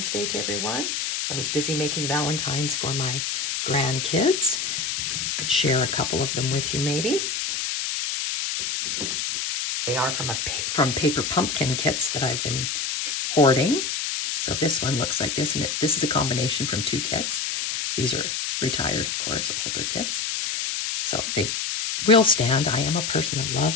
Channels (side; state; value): left; noise; hiss, 1 dB below the sound